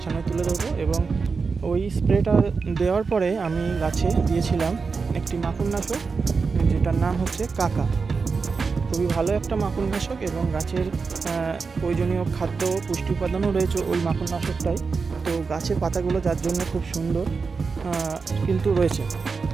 সামনে তুলে ধরবো। এবং ওই স্প্রেটা দেওয়ার পরে আমি গাছে দিয়েছিলাম একটি মাকড়নাশক, যেটার নাম হচ্ছে কাকা। খুবই ভালো একটা মাকড়নাশক এবং গাছের প্রয়োজনীয় খাদ্য পুষ্টি উপাদানও রয়েছে ওই মাকড়নাশকটাই। তো গাছের পাতাগুলো যার জন্য খুব সুন্দর কিন্তু রয়েছে,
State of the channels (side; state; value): left; quieter; 4.8 dB